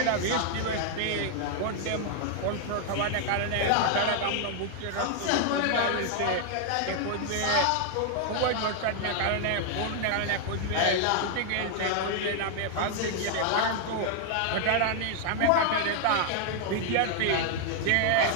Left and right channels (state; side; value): different; both; correlation 0.00